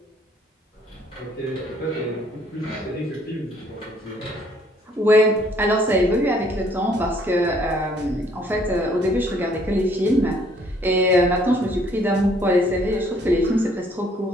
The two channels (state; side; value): normal; both; correlation 0.63